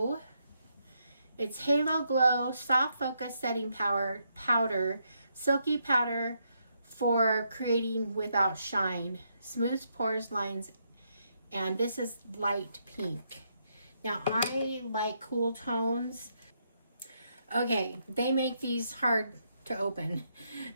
It's Halo Glow Soft Focus Setting Powder, Silky Powder for creating without shine, smooths pores, lines, and this is light pink. Now I like cool tones. Okay, they make these hard to open.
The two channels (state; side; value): inverted; both; correlation -0.78